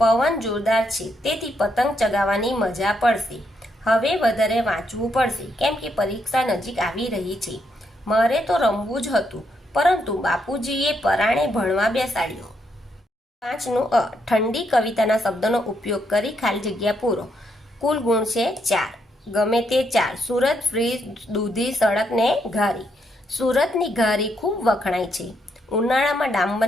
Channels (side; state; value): both; normal; correlation 0.77